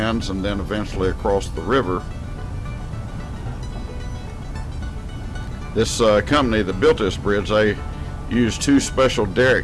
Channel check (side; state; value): both; identical; correlation 1.00